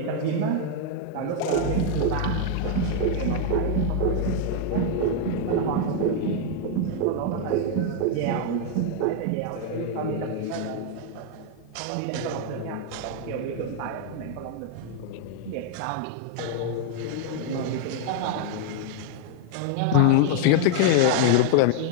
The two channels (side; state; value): both; different; correlation 0.00